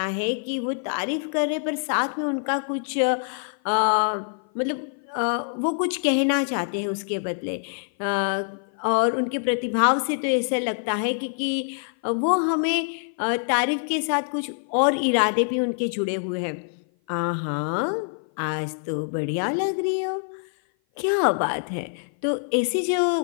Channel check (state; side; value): silent; right; 56 dB below the other